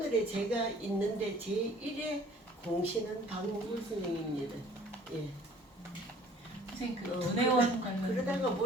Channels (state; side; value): normal; both; correlation 0.53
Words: 제가 있는데 제1의 공신은 박몽글 선생님입니다. 예. 선생님 그 문혜원 관련 그러다가